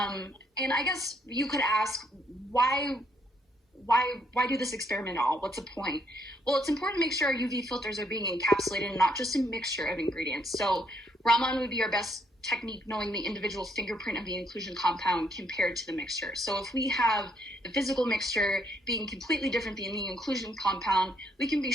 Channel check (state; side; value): normal; both; correlation 0.71